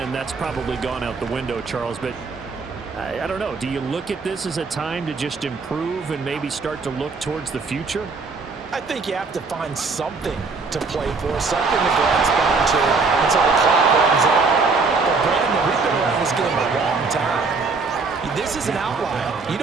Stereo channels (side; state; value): left; quieter; 4.4 dB